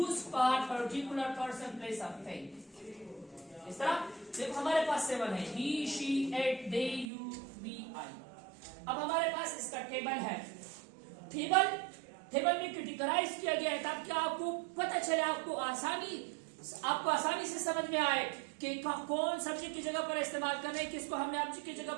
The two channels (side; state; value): left; drops out; at 7.1 s